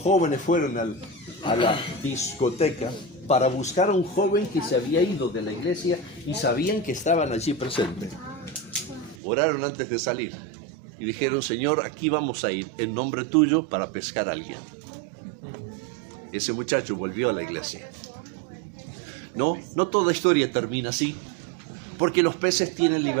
fueron a la discoteca para buscar a un joven que se había ido de la iglesia y sabían que estaban allí presentes, oraron antes de salir y dijeron, Señor, aquí vamos a ir en nombre tuyo para pescar a alguien. Ese muchacho volvió a la iglesia. No toda historia termina así, porque los peces tienen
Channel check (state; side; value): drops out; left; at 9.2 s